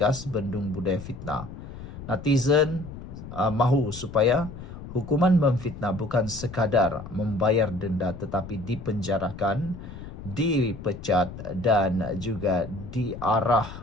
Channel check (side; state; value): left; noise; rumble, 12 dB below the sound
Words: bendung budaya fitnah. Netizen mahu supaya hukuman memfitnah bukan sekadar membayar denda tetapi dipenjarakan, dipecat dan juga